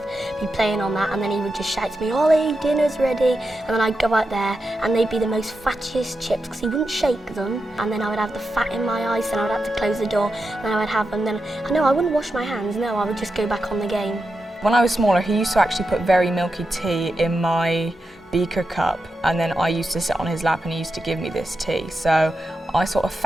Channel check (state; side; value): normal; both; correlation 0.88